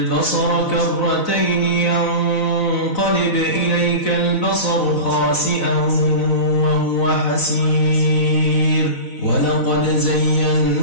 كرتين ينقلب إليك البصر خاسئا وهو حسير ولقد زينا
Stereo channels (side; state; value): right; late; 4.0 ms